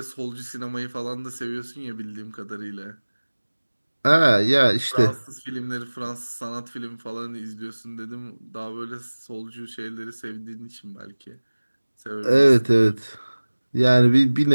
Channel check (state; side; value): inverted; both; correlation -1.00